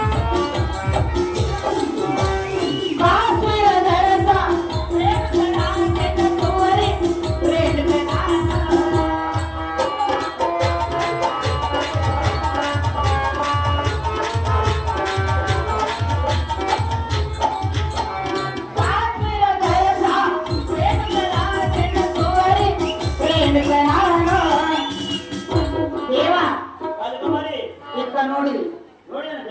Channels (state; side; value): identical; both; correlation 1.00